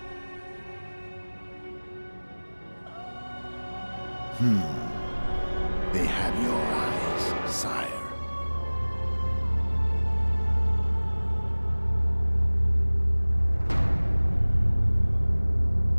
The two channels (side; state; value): both; inverted; correlation -1.00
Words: They have your eyes, sire.